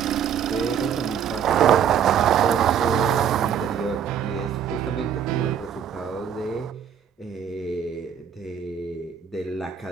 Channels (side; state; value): left; quieter; 8.3 dB